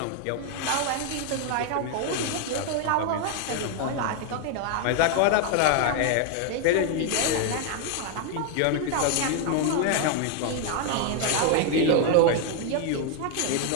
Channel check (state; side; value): different; both; correlation 0.01